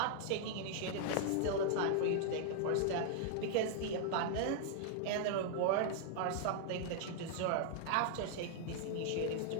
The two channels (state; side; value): different; both; correlation 0.00